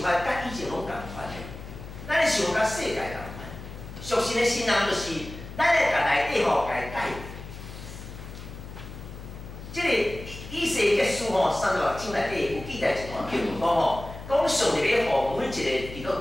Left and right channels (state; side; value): noise; left; hum, 12 dB below the sound